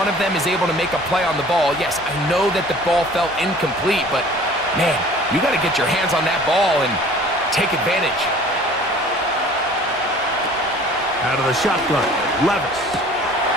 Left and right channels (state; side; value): normal; both; correlation 0.48